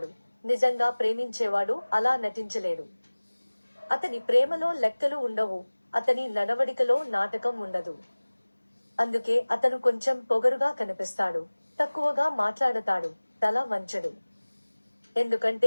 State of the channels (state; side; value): inverted; both; correlation -1.00